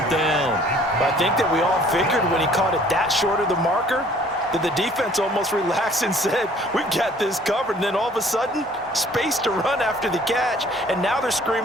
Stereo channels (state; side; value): normal; both; correlation 0.55